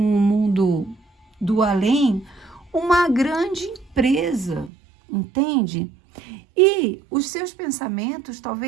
mundo do além uma grande empresa, entende? E os seus pensamentos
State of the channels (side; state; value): left; drops out; at 4.7 s